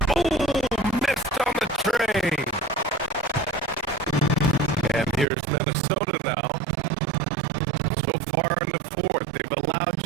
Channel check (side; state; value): left; drops out; at 5.2 s